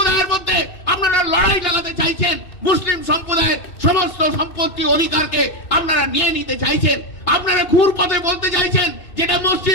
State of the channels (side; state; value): right; late; 2.6 ms